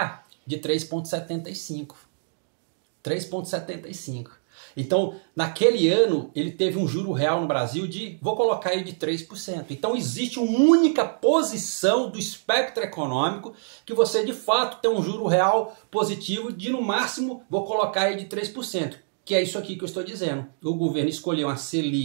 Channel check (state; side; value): silent; left; digital silence